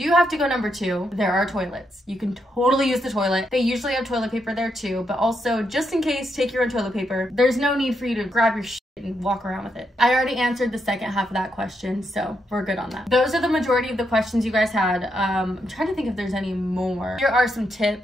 have to go number 2, there are toilets. You can totally use the toilet. They usually have toilet paper there too, but also just in case, take your own toilet paper. There's no need for you to grab your and walk around with it. I already answered the second half of that question, so we're good on that. Those are the majority of the questions you guys had. I'm trying to think if there's any more. Here are some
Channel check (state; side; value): normal; both; correlation 0.80